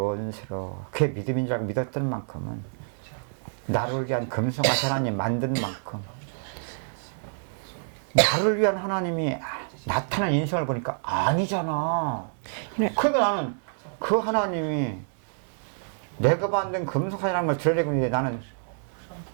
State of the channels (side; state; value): left; silent; digital silence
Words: 그게 믿음인 줄 알고 믿었던 만큼은 나를 위한 금송아지 하나님 만든 만큼 나를 위한 하나님이 나타난 인생을 보니까 아니잖아. 그러니까 나는 그 하나님이 내가 만든 금송아지라는 걸 드러내고 있는데 나는